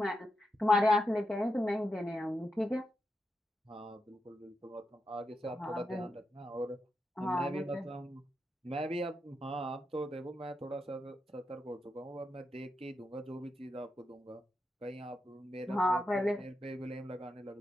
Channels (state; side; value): normal; both; correlation 0.86